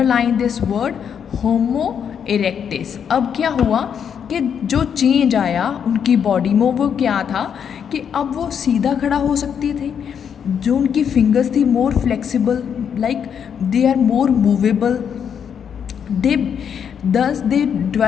this word, Homo erectus. अब क्या हुआ कि जो change आया उनकी body में, वो क्या था कि अब वो सीधा खड़ा हो सकते थे. जो उनकी फिंगर्स थी more flexible, like they are more movable. They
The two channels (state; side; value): quieter; right; 7.8 dB